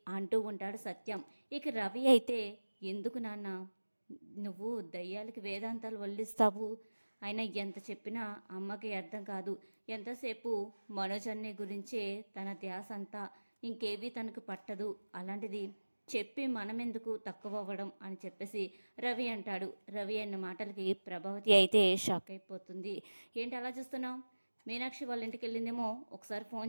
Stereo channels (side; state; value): both; inverted; correlation -1.00